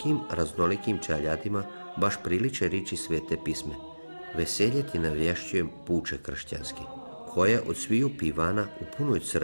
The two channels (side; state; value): both; inverted; correlation -1.00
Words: raznolikim čeljadima baš priliče riči svete pisme. Veselje ti navješćujem puče kršćanski, koja od sviju pivana u punoj